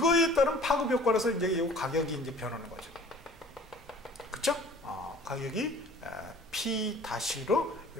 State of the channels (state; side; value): normal; both; correlation 0.49